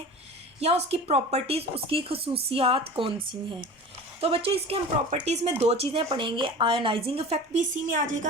या उसकी प्रॉपर्टीज़, उसकी खसूसियात कौन सी हैं। तो बच्चों इसके हम प्रॉपर्टीज़ में दो चीज़ें पढ़ेंगे। आयोनाइजिंग इफेक्ट भी इसी में आ जाएगा,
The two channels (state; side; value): normal; both; correlation 0.36